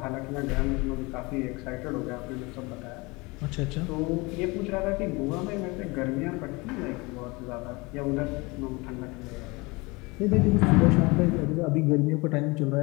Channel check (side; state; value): right; quieter; 25.3 dB